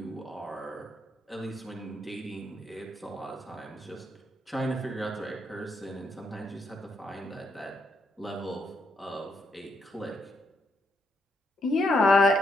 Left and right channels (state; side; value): normal; both; correlation 0.77